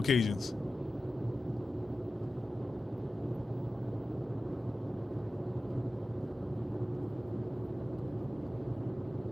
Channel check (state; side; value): normal; both; correlation 0.94